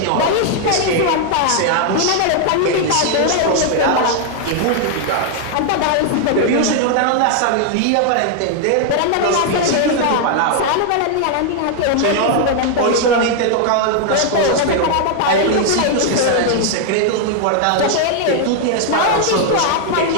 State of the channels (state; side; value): different; both; correlation 0.00